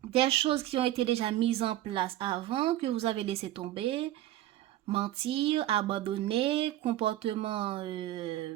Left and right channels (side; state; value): left; quieter; 14.1 dB